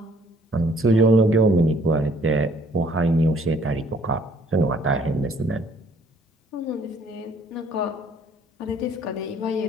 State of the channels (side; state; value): both; normal; correlation 0.60